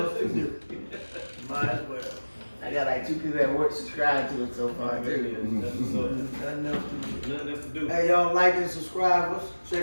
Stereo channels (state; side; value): inverted; both; correlation -1.00